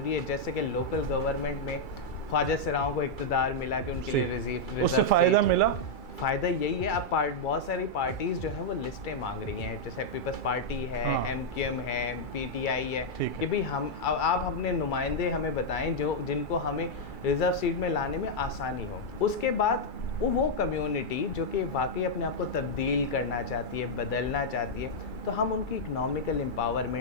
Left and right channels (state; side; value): late; right; 2.3 ms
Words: है। जैसे कि लोकल गवर्नमेंट में ख्वाजा सराओं को इक़्तिदार मिला कि उनके लिए रिजर्व, उससे फ़ायदा मिला। फ़ायदा यही है, अब बहुत सारी पार्टीज़ जो हैं वो लिस्टें मांग रही हैं, जैसे पीपल्स पार्टी है, MQM है, PTI है, कि भाई आप अपने नुमाइंदे हमें बताएं जिनको हमें रिज़र्व सीट में लाने में आसानी हो। उसके बाद वो कम्युनिटी जो कि वाकई अपने आप को तब्दील करना चाहती है, बदलना चाहती है, तो हम उनकी इकनॉमिकल